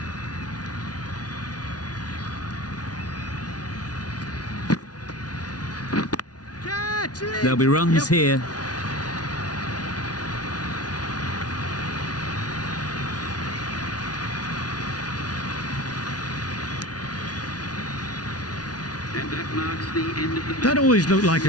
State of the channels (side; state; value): right; late; 0.69 ms